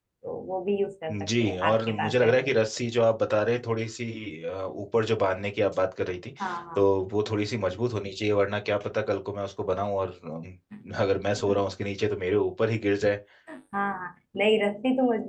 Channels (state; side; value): identical; both; correlation 1.00